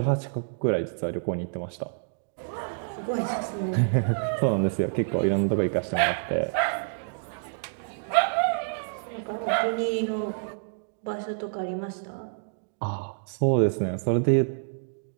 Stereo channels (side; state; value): left; silent; digital silence